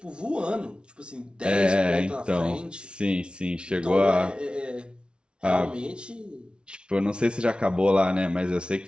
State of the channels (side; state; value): left; late; 0.057 ms